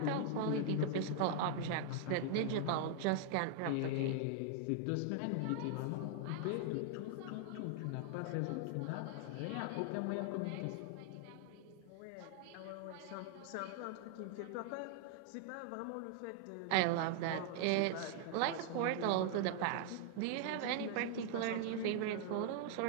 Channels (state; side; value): different; both; correlation 0.00